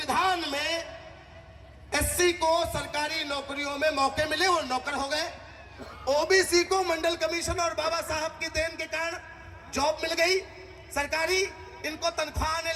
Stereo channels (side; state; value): both; identical; correlation 1.00